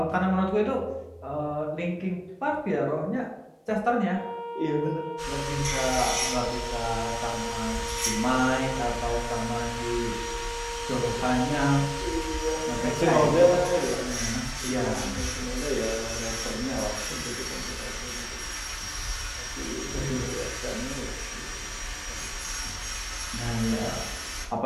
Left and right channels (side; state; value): both; identical; correlation 1.00